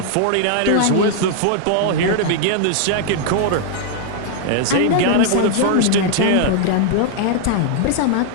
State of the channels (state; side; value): different; both; correlation 0.00